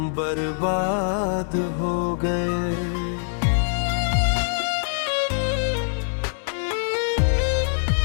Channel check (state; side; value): silent; right; 63 dB below the other